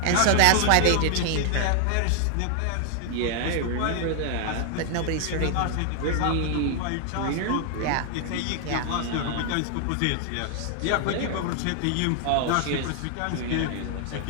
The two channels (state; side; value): different; both; correlation 0.00